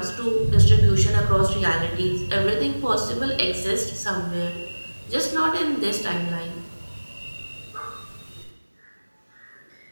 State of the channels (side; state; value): both; inverted; correlation -1.00